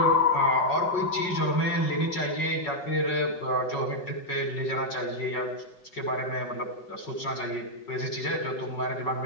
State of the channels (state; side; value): late; right; 5.4 ms